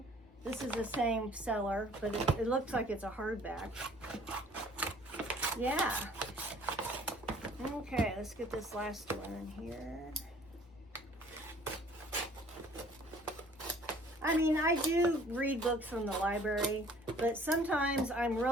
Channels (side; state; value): both; normal; correlation 0.54